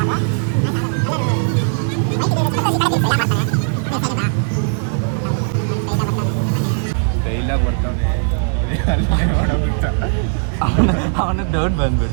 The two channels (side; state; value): left; silent; 67 dB below the other